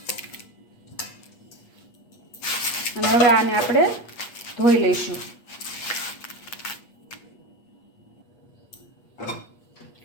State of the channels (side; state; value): right; late; 8.4 ms